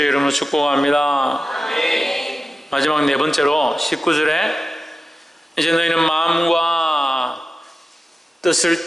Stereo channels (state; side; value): normal; both; correlation 0.94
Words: 이름으로 축복합니다. 마지막 네 번째로 19절에 이제 너희는 마음과